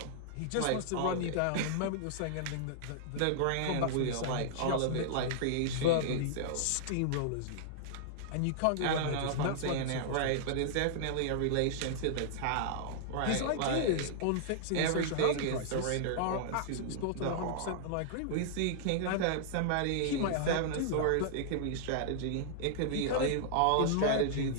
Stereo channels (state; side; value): different; both; correlation -0.01